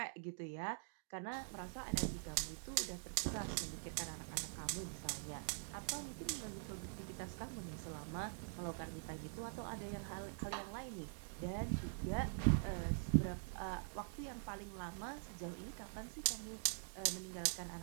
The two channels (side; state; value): left; silent; digital silence